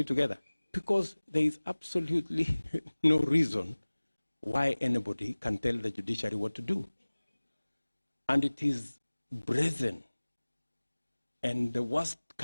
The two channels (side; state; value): both; inverted; correlation -1.00